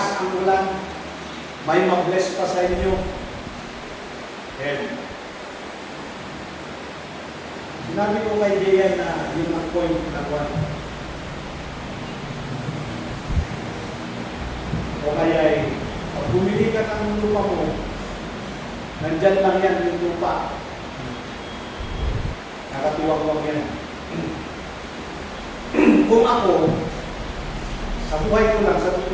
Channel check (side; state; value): both; identical; correlation 1.00